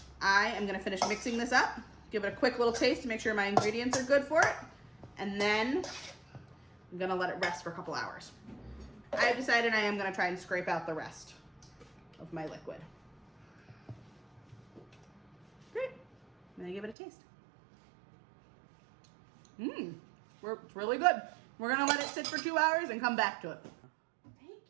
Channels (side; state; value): left; drops out; at 16.9 s